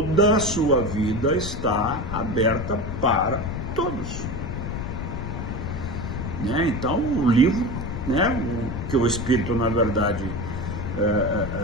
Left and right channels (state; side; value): noise; left; rumble, 5 dB below the sound